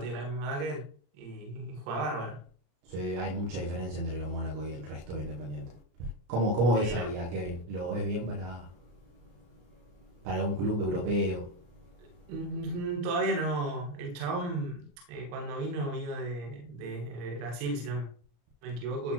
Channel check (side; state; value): left; late; 34 ms